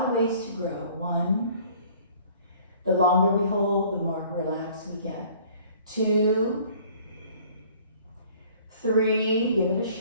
of ways to grow. 1, the longer we hold, the more relaxed we get. 2, 3, give it a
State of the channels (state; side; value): inverted; both; correlation -0.54